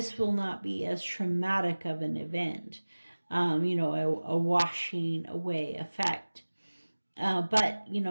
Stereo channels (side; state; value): both; inverted; correlation -1.00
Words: will not be as traumatic of an event, a washing away effect. But